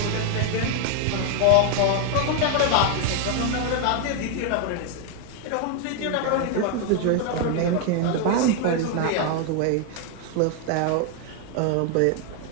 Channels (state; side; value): different; both; correlation 0.01